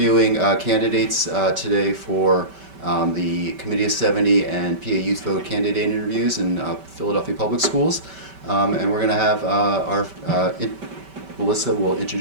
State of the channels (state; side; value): late; left; 5.2 ms